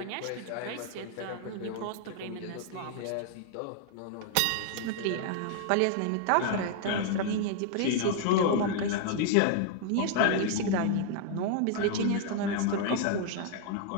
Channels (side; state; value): both; different; correlation 0.00